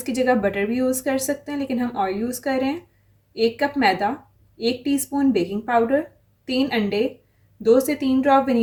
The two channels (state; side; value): identical; both; correlation 1.00